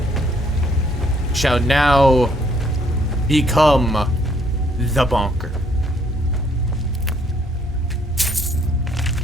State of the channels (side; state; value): both; normal; correlation 0.66